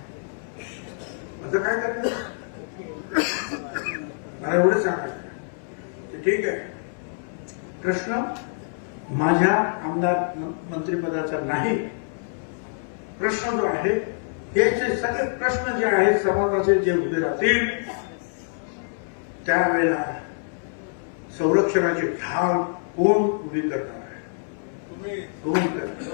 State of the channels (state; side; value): silent; right; 61 dB below the other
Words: असं काय करतो मला एवढं सांगायचं. ठीक आहे, प्रश्न माझ्या आमदार मंत्रिपदाचा नाही. प्रश्न जो आहे हे जे सगळे प्रश्न जे आहेत समाजाचे जे उभे राहतील त्यावेळेला संरक्षणाची ढाल कोण उभी करणार आहे, कोण करणार.